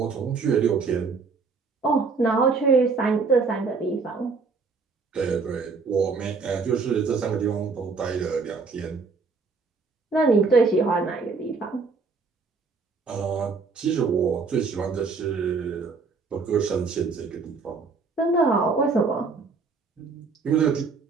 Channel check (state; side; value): quieter; left; 4.6 dB